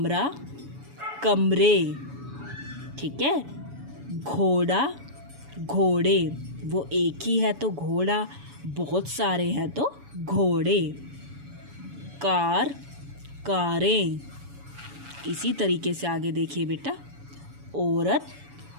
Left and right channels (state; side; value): late; left; 7.1 ms